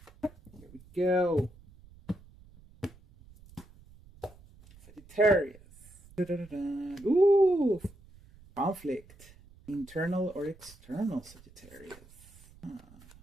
Here we go. Sagittarius. Ooh, conflict, internal or external Sagittarius.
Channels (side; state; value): right; noise; rumble, 23 dB below the sound